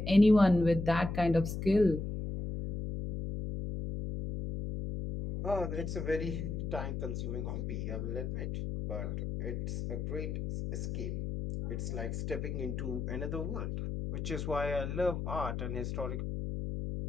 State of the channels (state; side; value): noise; left; hum, 3 dB below the sound